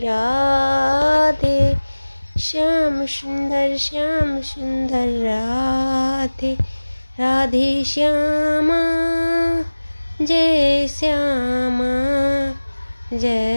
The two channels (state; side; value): inverted; both; correlation -1.00